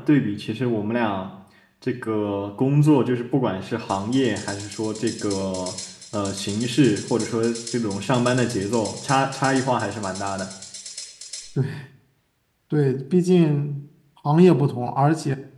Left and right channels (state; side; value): identical; both; correlation 1.00